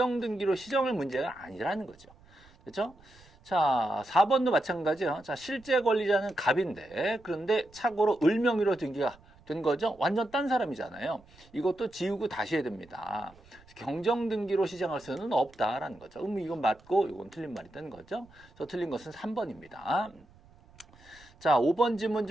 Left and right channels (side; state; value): right; noise; rumble, 26 dB below the sound